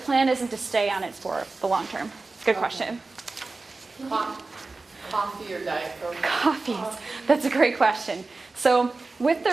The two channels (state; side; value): quieter; left; 3.6 dB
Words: isn't to stay on it for the long term. Good question. Coffee or Diet Coke? Coffees. That's a great question. So with the